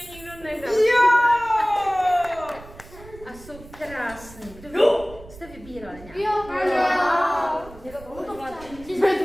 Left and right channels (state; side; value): noise; right; rumble, 19 dB below the sound